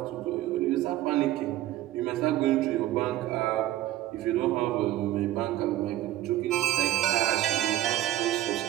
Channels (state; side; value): quieter; left; 14.5 dB